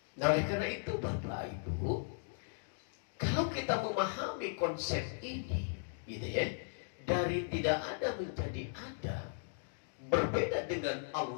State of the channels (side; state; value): right; silent; digital silence